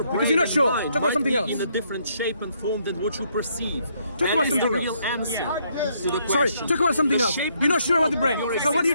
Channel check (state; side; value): inverted; both; correlation -0.72